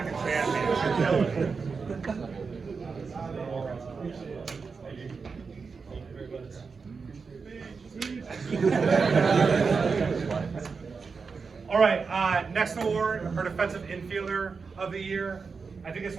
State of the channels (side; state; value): left; quieter; 5.0 dB